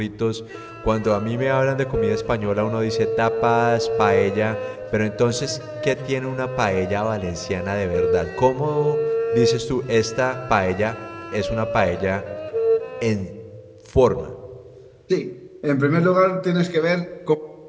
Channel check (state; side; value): identical; both; correlation 1.00